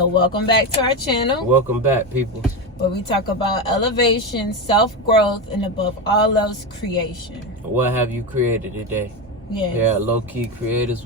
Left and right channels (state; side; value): normal; both; correlation 0.15